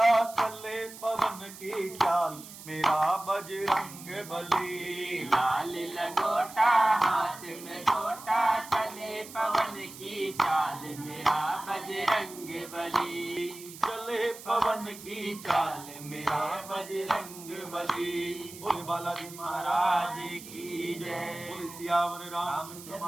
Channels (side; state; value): right; noise; hiss, 15 dB below the sound